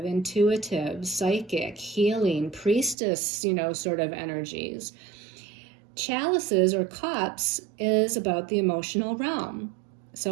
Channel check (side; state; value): left; drops out; at 3.0 s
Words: intuitive, psychic, healing, priestess, sort of energies. Chalices or cups is about the emotional realm.